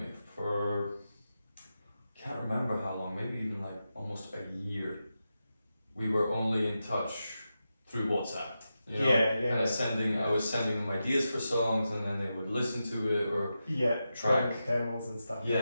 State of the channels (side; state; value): both; inverted; correlation -0.90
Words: can't remember how long, maybe even like almost a year, we were only in touch through WhatsApp. I was sending them ideas for songs, and then they would listen to it or track demos and stuff.